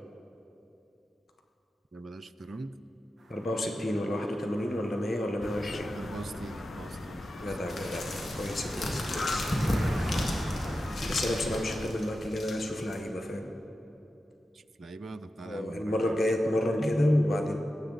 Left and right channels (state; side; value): normal; both; correlation 0.91